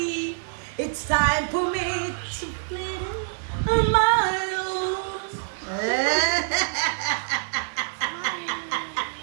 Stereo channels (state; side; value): silent; left; 61 dB below the other